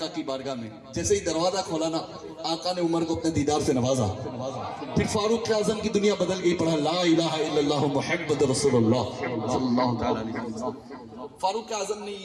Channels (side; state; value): both; identical; correlation 1.00